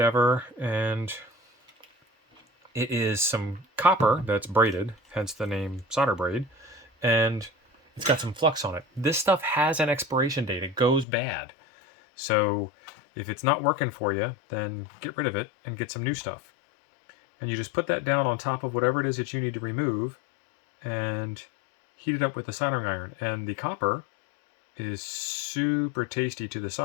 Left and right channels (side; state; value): right; drops out; at 11.1 s